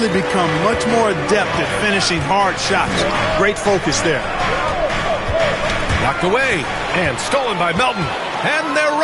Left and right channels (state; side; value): identical; both; correlation 1.00